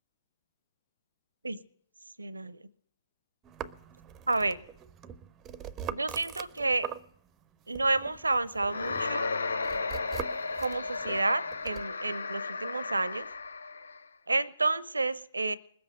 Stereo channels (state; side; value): inverted; both; correlation -0.88